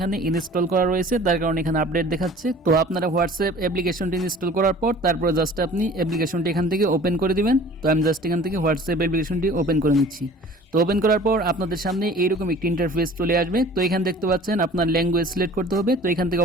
ইনস্টল করা রয়েছে, তার কারণে এখানে আপডেট দেখাচ্ছে। তো আপনারা হোয়াটসঅ্যাপ অ্যাপ্লিকেশনটি ইনস্টল করার পর তারপর জাস্ট আপনি অ্যাপ্লিকেশনটি এখান থেকে ওপেন করে দিবেন। তো আমি জাস্ট এখান থেকে হোয়াটসঅ্যাপ অ্যাপ্লিকেশনটি ওপেন করে নিচ্ছি। তো ওপেন করার পর আপনাদের সামনে এইরকম একটি ইন্টারফেস চলে আসবে। তো এখানে দেখতে পাচ্ছেন আপনার ল্যাঙ্গুয়েজ সিলেক্ট করতে হবে। তো এখান থেকে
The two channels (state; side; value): normal; both; correlation 0.47